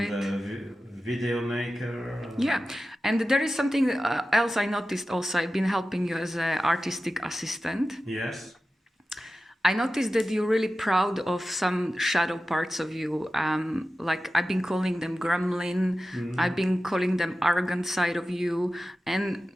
and video maker. Yeah, and there is something else I noticed also. I've been helping you as an artistic assistant. Yes. I noticed that you're really proud of some shadow parts of you. Like I've been calling them gremlin, I've been calling them arrogant side of you. And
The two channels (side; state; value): both; normal; correlation 0.94